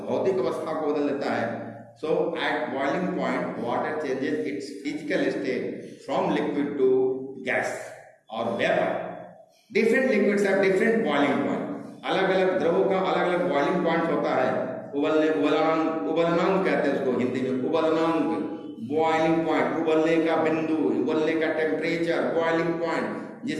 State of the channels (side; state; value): both; identical; correlation 1.00